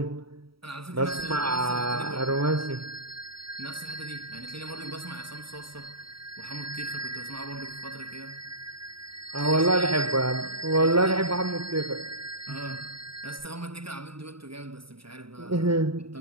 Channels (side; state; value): left; late; 0.75 ms